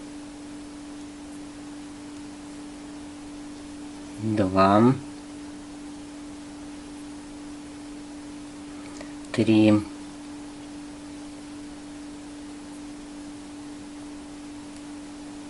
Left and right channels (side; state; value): both; identical; correlation 1.00